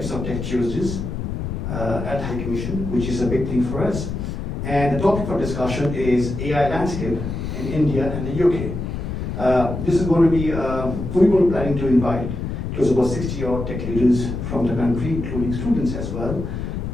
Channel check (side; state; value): left; noise; rumble, 5 dB below the sound